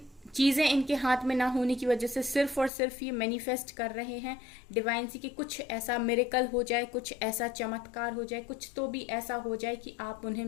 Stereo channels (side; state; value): right; drops out; at 2.7 s